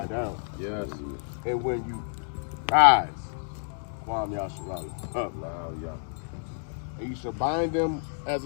down. Yes. And when you rise. Kwam Yasharala. Up. And you shall bind them as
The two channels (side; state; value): right; silent; digital silence